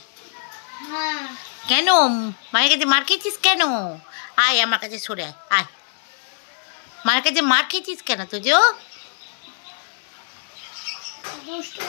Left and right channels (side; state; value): right; silent; digital silence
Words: কেন মায়ের কাছে মার খেয়েছিস কেন? আয় আমার কাছে সরে আয়, আয়। মায়ের কাছে মার খেয়েছিস কেন তোজো? দুষ্টু